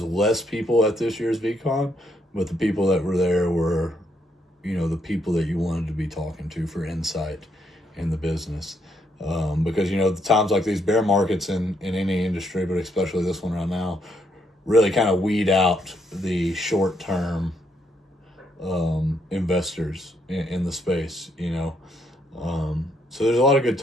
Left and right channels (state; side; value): normal; both; correlation 0.74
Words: less people at this year's VCon, but the people that were there were, the people that you wanted to be talking to for insight in the business. Because, the times like these bear markets in any industry, but especially this one right now, really kind of weed out the short-term investors in the space, So there's a lot of good